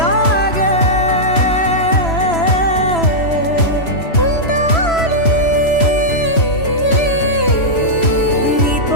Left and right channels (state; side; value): late; right; 3.0 ms